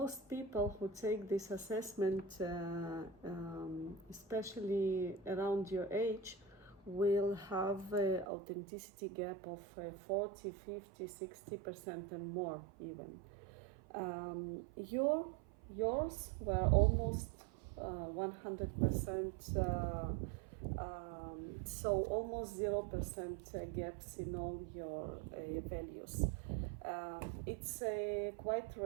people who take this assessment, especially around your age, will have an authenticity gap of 40, 50, 60% and more even. Yours were almost 100%, so almost 0% gaps in all your values. It's quite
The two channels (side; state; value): left; drops out; at 8.2 s